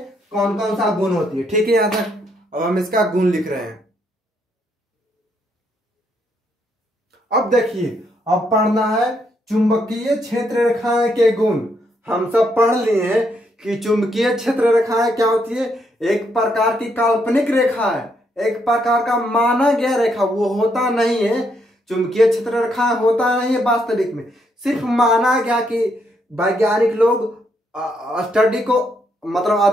कौन सा गुण होती है, ठीक है? यहां तक। अब हम इसका गुण लिख रहे हैं। अब देखिए, अब पढ़ना है चुंबकीय क्षेत्र रेखाएं के गुण। हम सब पढ़ लिए हैं कि चुंबकीय क्षेत्र रेखाएं क्या होती है। एक प्रकार की काल्पनिक रेखा है, एक प्रकार का माना गया रेखा, वो होता नहीं है। चुंबकीय क्षेत्र रेखाएं होता नहीं है वास्तविक में, सिर्फ माना गया कि वैज्ञानिक लोग स्टडी को, मतलब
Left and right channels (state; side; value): normal; both; correlation 0.75